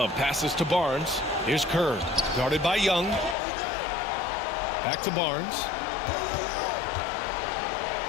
passes to Barnes. Here's Kerr. Guarded by Young. Back to Barnes.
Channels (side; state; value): right; drops out; at 3.4 s